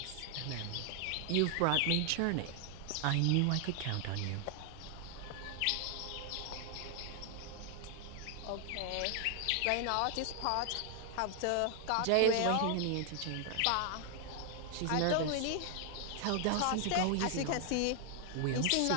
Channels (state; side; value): different; both; correlation 0.00